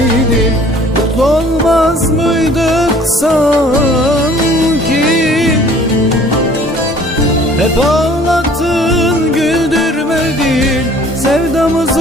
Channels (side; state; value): both; normal; correlation 0.53